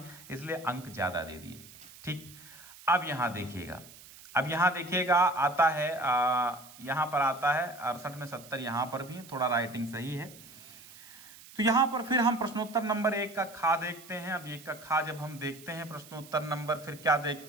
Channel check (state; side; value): noise; right; hiss, 19 dB below the sound